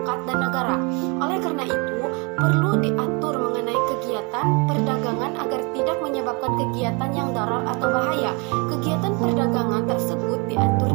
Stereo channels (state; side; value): quieter; left; 31.3 dB